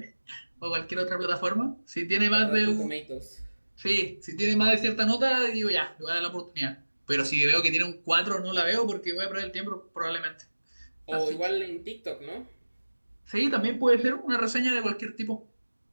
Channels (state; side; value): inverted; both; correlation -1.00